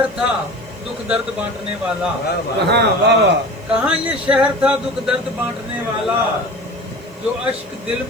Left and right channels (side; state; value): right; noise; hiss, 29 dB below the sound